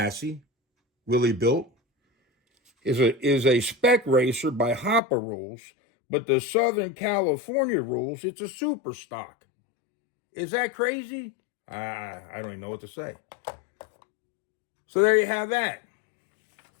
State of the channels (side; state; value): right; drops out; at 5.0 s